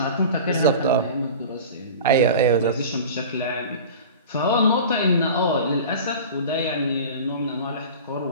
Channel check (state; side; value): inverted; both; correlation -0.36